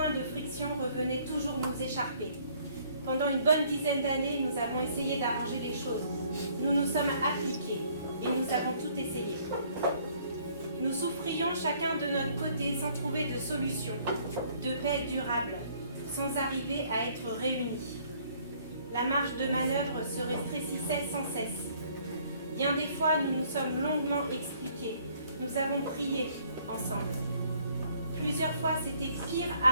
de friction revenaient toujours nous écharper. Pendant une bonne dizaine d'années, nous avons essayé d'arranger les choses. Nous nous sommes appliqués et nous avons tout essayé. Nous souffrions chacun de notre côté sans trouver de solution, de paix durable, sans arriver à être réunis. La marge de manœuvre se rétrécissait sans cesse. Bien des fois, nous nous sommes longuement expliqués. Nous avons prié ensemble. Plusieurs fois, c'était pire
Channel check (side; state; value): both; inverted; correlation -0.62